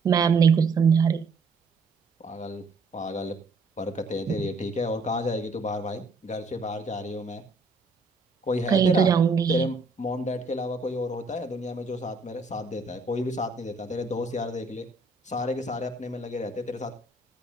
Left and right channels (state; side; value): quieter; left; 3.7 dB